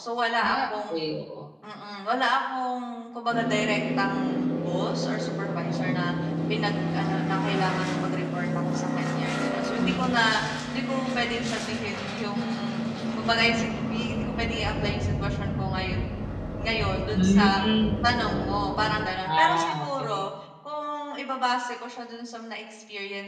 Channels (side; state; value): both; identical; correlation 1.00